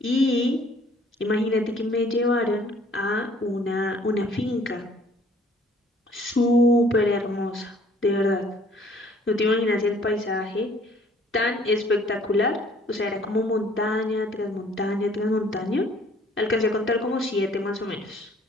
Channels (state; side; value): normal; both; correlation 0.57